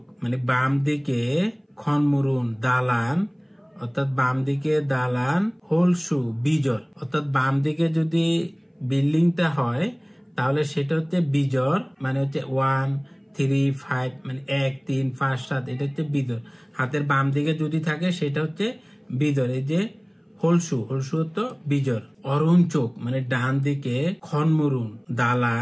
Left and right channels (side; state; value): both; identical; correlation 1.00